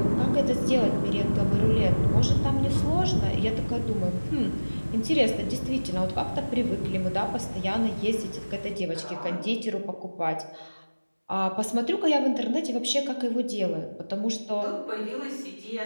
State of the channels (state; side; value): inverted; both; correlation -1.00